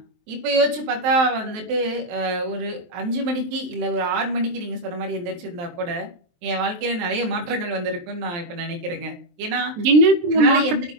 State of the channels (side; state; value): left; late; 23 ms